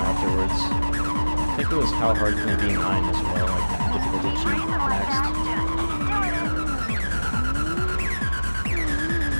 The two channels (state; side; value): inverted; both; correlation -1.00